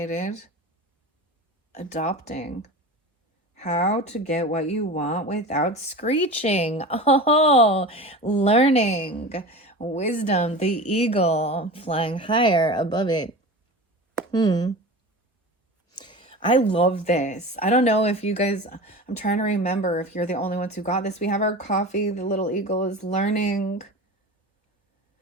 Adopting. How to get what you want without screeching. Oh, learning. Wisdom, the eagle flying higher above it. I love this. I don't know if you guys, I'm trying to remember if you're the only ones who got this. We have our coffee. The little eagle is learning.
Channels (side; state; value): both; normal; correlation 0.32